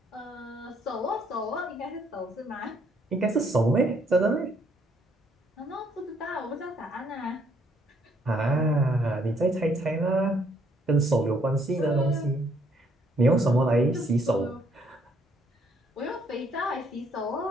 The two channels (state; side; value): normal; both; correlation 0.67